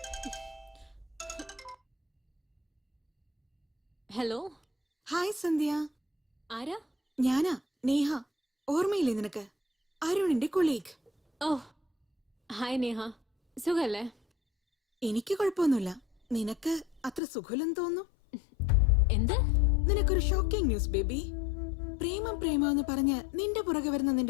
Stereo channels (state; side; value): drops out; right; at 17.2 s